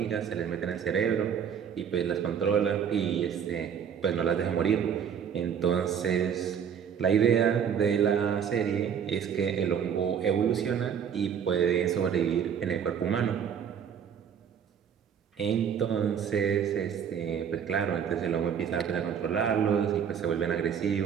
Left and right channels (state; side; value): quieter; left; 7.9 dB